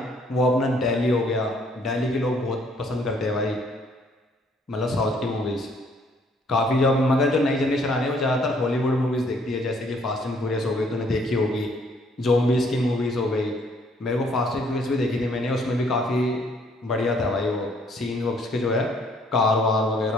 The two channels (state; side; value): normal; both; correlation 0.64